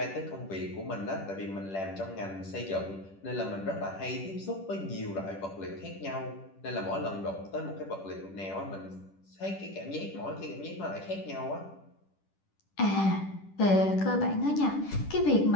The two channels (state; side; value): late; right; 10 ms